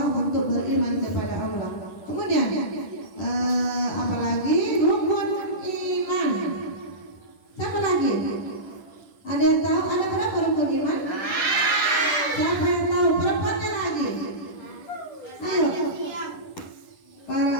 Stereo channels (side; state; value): right; late; 10 ms